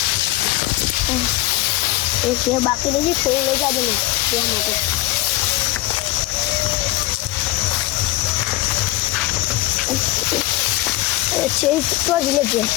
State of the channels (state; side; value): quieter; right; 17.9 dB